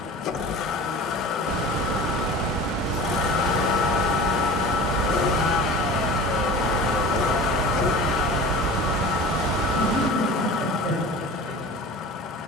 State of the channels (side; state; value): both; normal; correlation 0.37